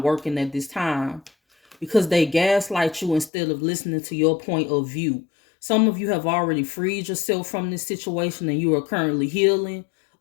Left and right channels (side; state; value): right; drops out; at 3.3 s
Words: working at this time, because they gaslight you instead of listening to your point of view. Some of you have already freed yourself from this situation and you are currently healing.